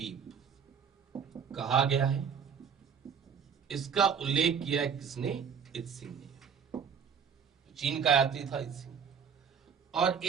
कहा गया है। इसका उल्लेख किया है किसने, इत्सिंग ने, चीन का यात्री था इत्सिंग। और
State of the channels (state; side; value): quieter; left; 6.9 dB